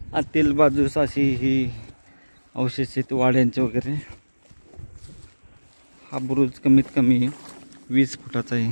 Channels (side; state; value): both; inverted; correlation -1.00